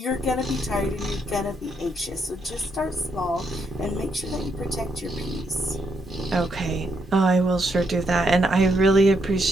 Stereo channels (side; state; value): both; normal; correlation 0.77